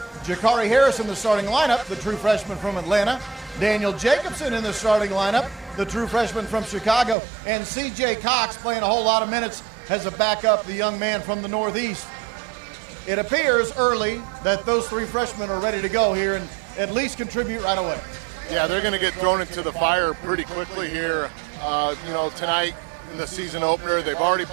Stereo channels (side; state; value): left; drops out; at 7.2 s